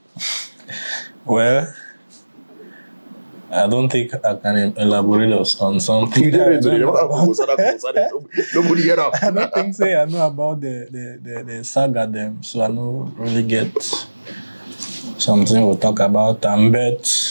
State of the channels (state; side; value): inverted; both; correlation -1.00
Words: Well, I don't think I can elaborate on something. You didn't Nobody get up. I don't think so. I know about the saga them, so I don't really get something we'll talk about.